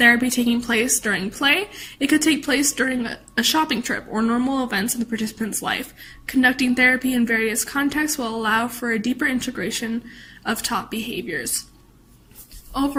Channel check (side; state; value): both; identical; correlation 1.00